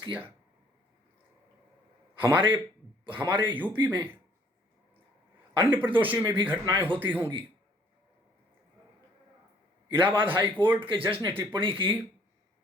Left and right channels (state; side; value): normal; both; correlation 0.60